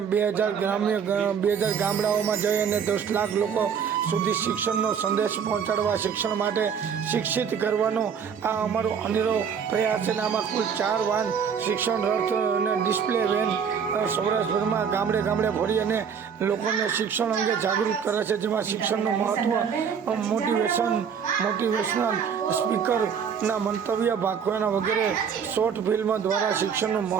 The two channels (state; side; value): quieter; left; 7.1 dB